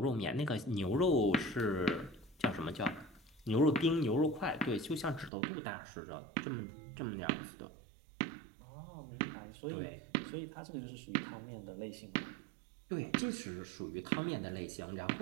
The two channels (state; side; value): drops out; left; at 5.3 s